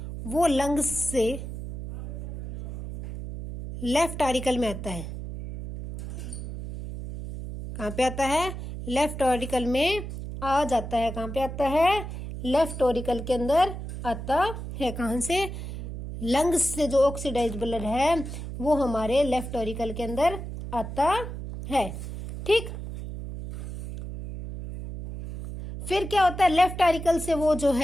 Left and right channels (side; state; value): right; noise; hum, 8 dB below the sound